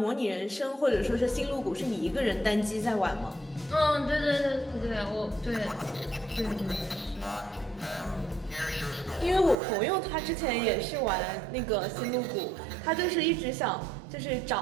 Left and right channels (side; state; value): left; drops out; at 9.6 s